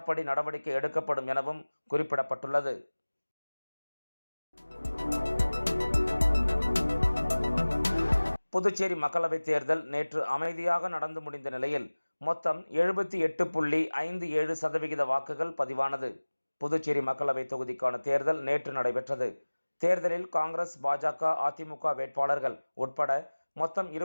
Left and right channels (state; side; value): inverted; both; correlation -1.00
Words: நடவடிக்கை எடுக்கப்படும் எனவும் குறிப்பிடப்பட்டுள்ளது. புதுச்சேரி மக்களவைத் தேர்தல் நேற்று அமைதியாக நடந்து முடிந்த நிலையில் மொத்தம் 78.57% வாக்குகள் பதிவானது. புதுச்சேரி மக்களவை தொகுதிக்கான தேர்தல் நேற்று நடைபெற்றது. தேர்தலில் காங்கிரஸ், பாஜக, அதிமுக வேட்பாளர்கள் உட்பட மொத்தம்